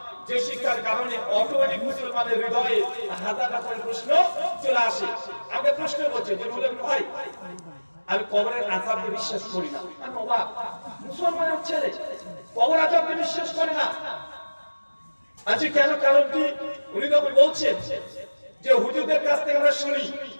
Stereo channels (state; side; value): inverted; both; correlation -1.00